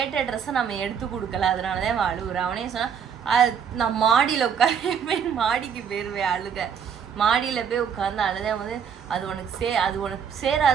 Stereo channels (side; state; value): left; quieter; 7.5 dB